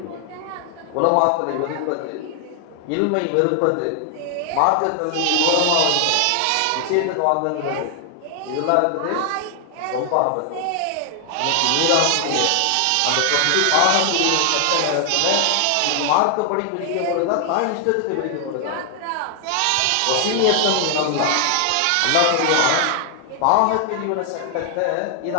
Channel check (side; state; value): both; different; correlation 0.00